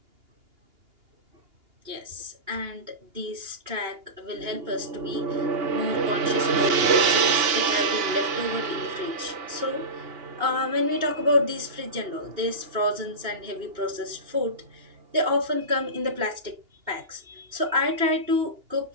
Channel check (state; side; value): late; left; 2.8 ms